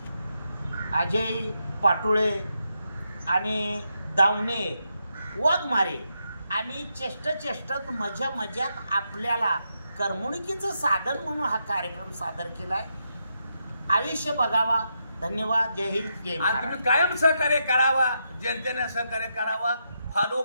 अजय पाटोळे आणि दावणे वाघमारे आणि चेष्टत मजात आपल्याला करमणुकीचं साधन म्हणून हा कार्यक्रम सादर केलाय. आयुष्य बघावा. धन्यवाद. जय हिंद जय महाराष्ट्र. तुम्ही कायम सहकार्य करावा. जनतेने सहकार्य करावा. फॉलो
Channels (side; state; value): both; inverted; correlation -0.83